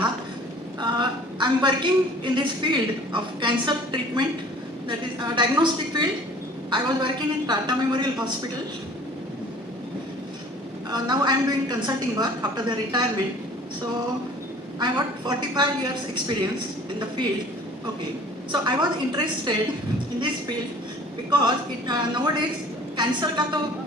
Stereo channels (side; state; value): both; normal; correlation 0.49